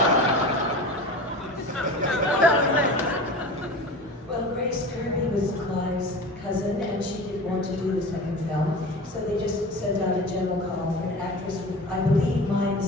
Well, Grace Kirby was Clive's cousin, and she didn't want to do the second film, so they just sent out a general call for an actress with, I believe, mime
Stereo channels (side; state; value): both; normal; correlation 0.34